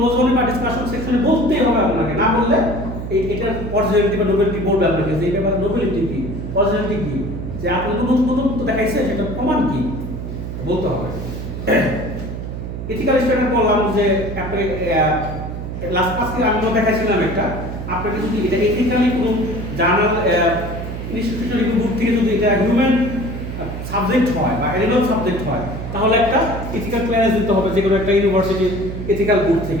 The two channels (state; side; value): noise; right; hum, 7 dB below the sound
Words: বা ডিসকাশন সেকশনে বলতেই হবে আপনাকে, না বললে এটার অরিজিনালিটি বা নোবেলিটি বলবে আপনাকে, যে এই পেপারের নোবেলিটি কি, অরিজিনালিটি কি, যে আপনি তো নতুন দেখাইছে, সেটা প্রমাণ কি বলতে হবে। এথিক্যাল স্ট্যান্ডার্ড বললাম যে আপনি লাস্ট আজকে আমি দেখাইছিলাম একটা, আপনাকে যদি এটা এথিক্যালি কোনো জার্নাল ইনস্টিটিউশন রিভিউ বুক থেকে যদি এটা হিউম্যান সাবজেক্ট হয় বা অ্যানিমাল সাবজেক্ট হয়, তাহলে একটা এথিক্যাল ক্লিয়ারেন্স দিতে হবে যে কোনো একটা ইউনিভার্সিটি এথিক্যাল বুক